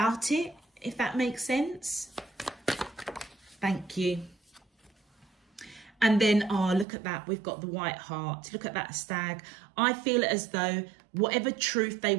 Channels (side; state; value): left; drops out; at 6.9 s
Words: it, if that makes sense. Thank you. And then, oh, look at that. We've got the White Heart. Look at that stag. I feel as though whatever truth they